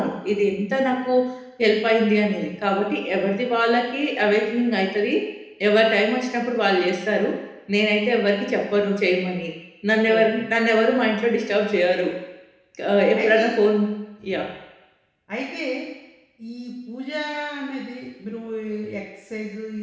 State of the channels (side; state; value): both; identical; correlation 1.00